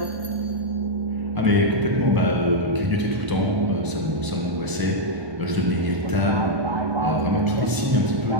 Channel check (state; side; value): late; left; 1.0 ms